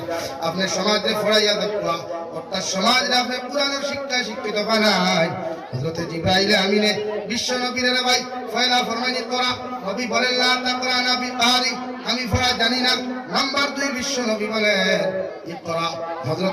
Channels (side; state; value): both; identical; correlation 1.00